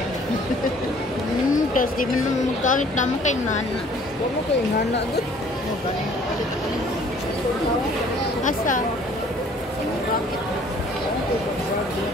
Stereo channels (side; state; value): both; normal; correlation 0.56